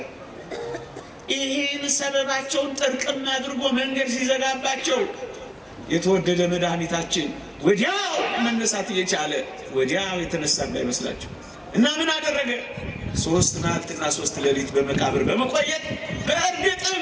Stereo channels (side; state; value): both; identical; correlation 1.00